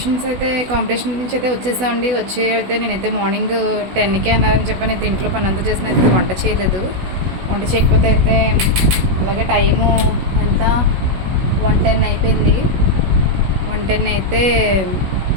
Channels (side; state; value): left; late; 16 ms